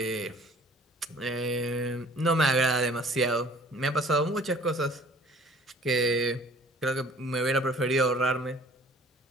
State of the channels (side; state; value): both; normal; correlation 0.51